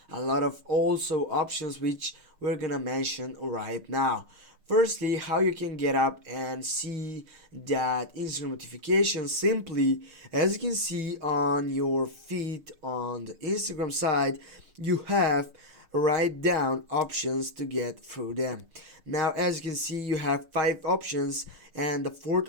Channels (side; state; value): left; late; 6.5 ms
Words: a lot of also options which we're gonna mention right now. Firstly, how you can get up and see that Instagram notifications simply, as you can see on your feed on the Instagram side, you have write down options to get through them. Now, as you can see, you have 5 options, and the fourth